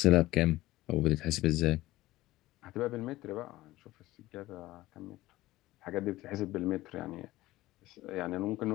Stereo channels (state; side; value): quieter; right; 17.3 dB